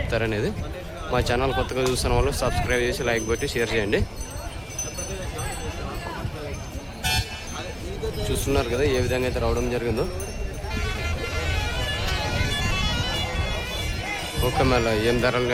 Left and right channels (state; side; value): identical; both; correlation 1.00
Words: మా ఛానల్ కొత్తగా చూస్తున్న వాళ్ళు సబ్స్క్రైబ్ చేసి లైక్ పెట్టి షేర్ చేయండి. చూస్తున్నారు కదా ఏ విధంగా అయితే రావడం జరిగిందో. ఓకే, మళ్ళీ ఏం ధరలు